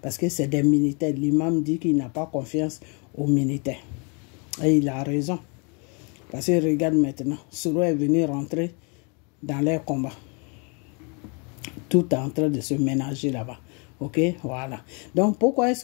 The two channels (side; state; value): right; quieter; 34.6 dB